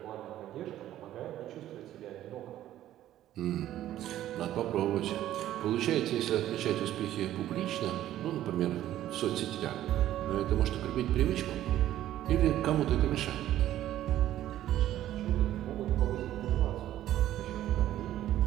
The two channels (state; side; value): quieter; left; 12.9 dB